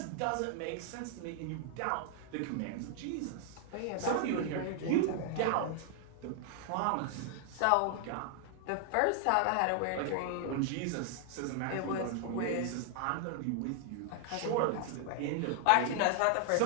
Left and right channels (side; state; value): both; different; correlation 0.00